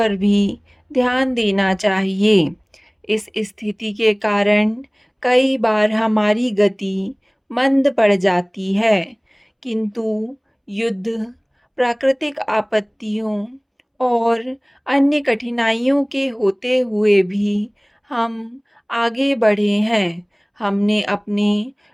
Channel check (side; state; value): both; identical; correlation 1.00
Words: भी ध्यान देना चाहिए। इस स्थिति के कारण कई बार हमारी गति मंद पड़ जाती है, किंतु युद्ध, प्राकृतिक आपत्तियों और अन्य कठिनाइयों के होते हुए भी हम आगे बढ़े हैं। हमने अपने